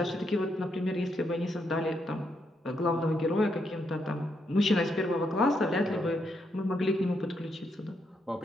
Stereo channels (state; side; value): normal; both; correlation 0.79